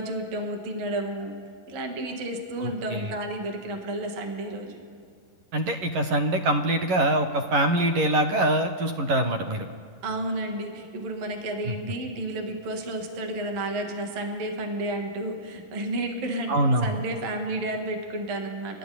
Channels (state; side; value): late; left; 11 ms